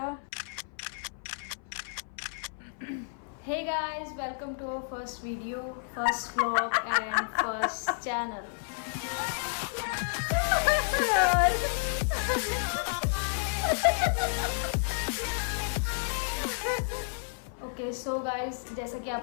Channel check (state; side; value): silent; right; 56 dB below the other